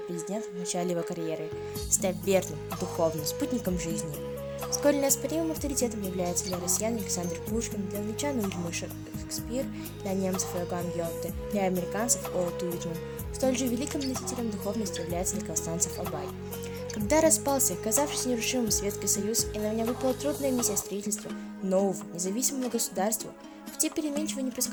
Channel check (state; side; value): identical; both; correlation 1.00